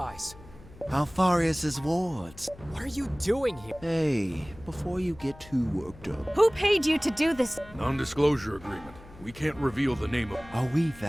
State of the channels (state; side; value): noise; left; hum, 20 dB below the sound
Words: How far is his wards? What are you doing here? Hey, before you get too worked up, Who paid you to do this? Non-disclosure agreement. We can't reveal the name of... are we